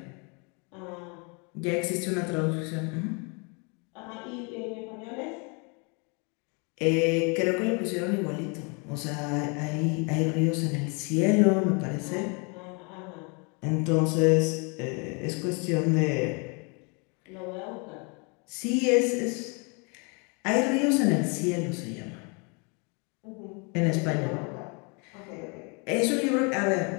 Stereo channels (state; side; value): quieter; right; 33.2 dB